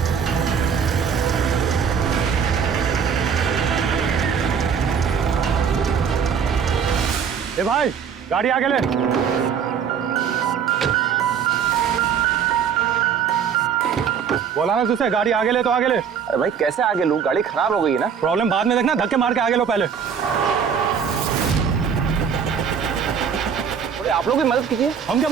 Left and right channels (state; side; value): quieter; left; 7.2 dB